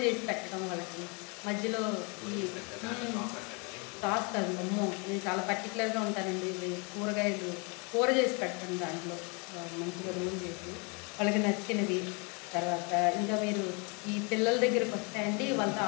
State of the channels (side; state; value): right; quieter; 32.5 dB